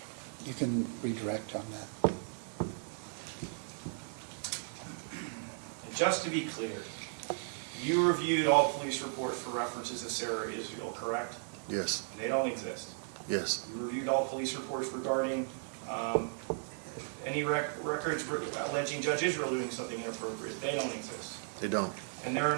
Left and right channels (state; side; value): silent; left; digital silence